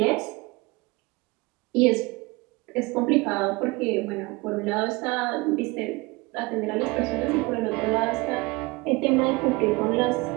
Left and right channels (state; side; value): quieter; left; 24.2 dB